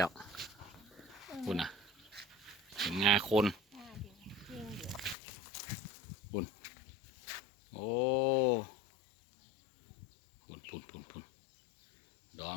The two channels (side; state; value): right; drops out; at 5.2 s